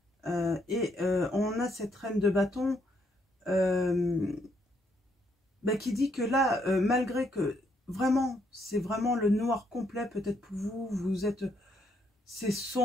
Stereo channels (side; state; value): both; normal; correlation 0.73